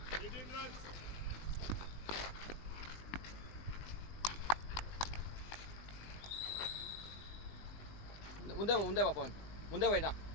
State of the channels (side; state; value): right; late; 20 ms